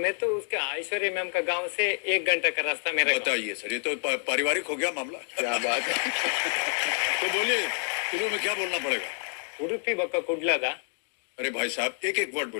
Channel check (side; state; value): right; silent; 57 dB below the other